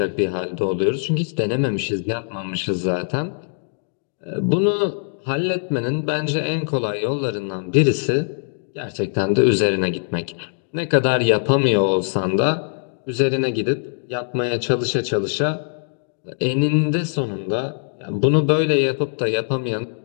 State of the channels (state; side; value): silent; right; digital silence